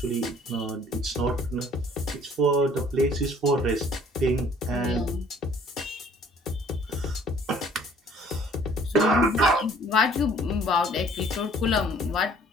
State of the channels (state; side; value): normal; both; correlation 0.56